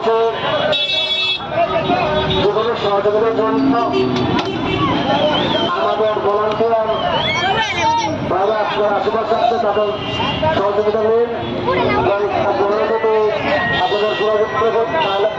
যে কোনো সহযোগিতার জন্য আমাদের ভলান্টিয়ার ভাইরা আপনার আশেপাশে আছে, তাদের সহযোগিতা নিন। আপনাদের যোগাযোগ করবেন, তাহলে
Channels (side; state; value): both; identical; correlation 1.00